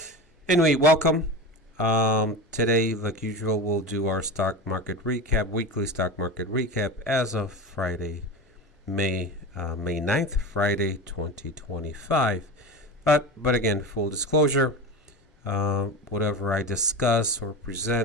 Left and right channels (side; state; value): both; normal; correlation 0.27